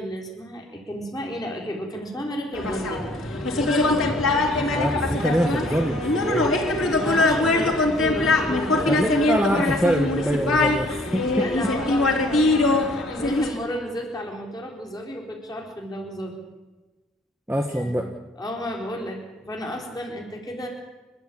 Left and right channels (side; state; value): both; normal; correlation 0.58